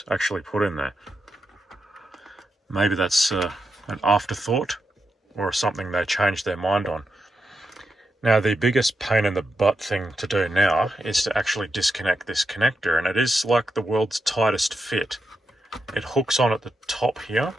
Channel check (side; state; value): both; normal; correlation 0.86